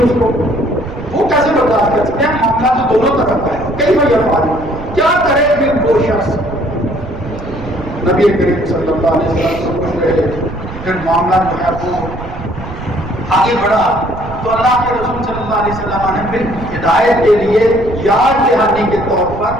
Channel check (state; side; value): noise; right; rumble, 11 dB below the sound